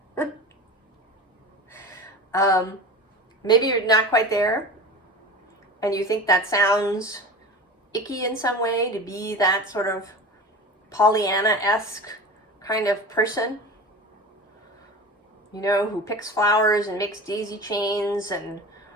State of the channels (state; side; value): normal; both; correlation 0.32